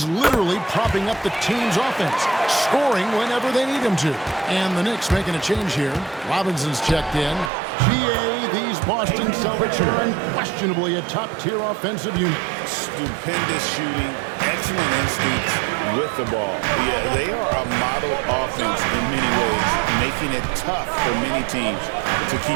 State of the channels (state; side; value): drops out; left; at 7.5 s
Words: literally propping up the team's offense, scoring whenever they need him to. And the Knicks making a change here. Robinson's checked in. GA, these Boston Celtics are unquestionably a top-tier offensive unit. Stupendous shooting, excellent instincts with the ball. Yeah, they are a model offense in many ways, making it tough for many teams to